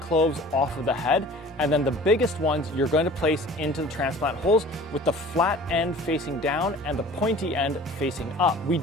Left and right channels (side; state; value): both; normal; correlation 0.45